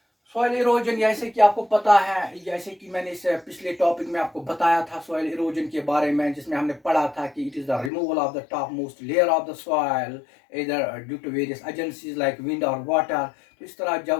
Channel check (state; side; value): drops out; right; at 7.9 s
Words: सॉइल इरोजन जैसे कि आपको पता है, जैसे कि मैंने इस पिछले टॉपिक में आपको बताया था सॉइल इरोजन के बारे में, जिसमें हमने पढ़ा था कि it is the removal of the top most layer of the soil इधर due to various agencies like wind और वाटर। तो इस तरह